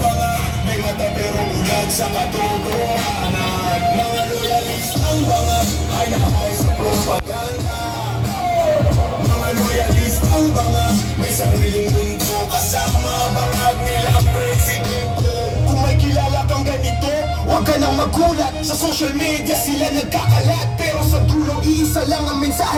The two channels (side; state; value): both; identical; correlation 1.00